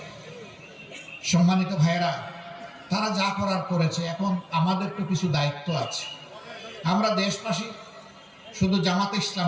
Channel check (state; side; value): identical; both; correlation 1.00